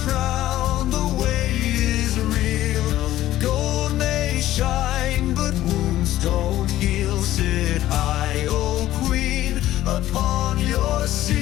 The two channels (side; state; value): right; quieter; 14.2 dB